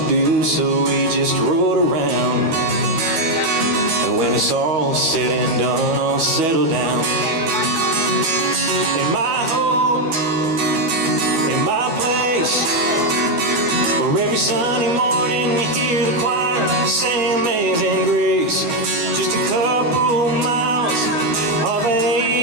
do, so we just rode around. And when it's all said and done, I'll settle down in my home, in my place, where every Sunday morning you hear the choir sing Amazing Grace. Just a couple miles off of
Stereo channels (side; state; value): left; late; 13 ms